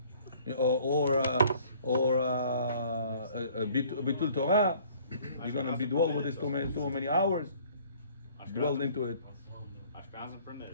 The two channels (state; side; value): inverted; both; correlation -0.56